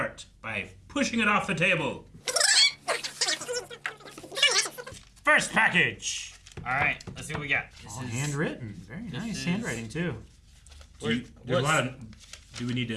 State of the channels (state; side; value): identical; both; correlation 1.00